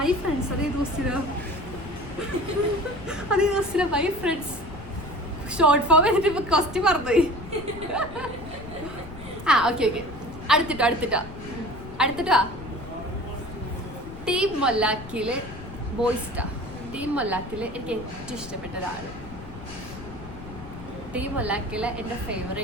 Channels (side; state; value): left; noise; rumble, 13 dB below the sound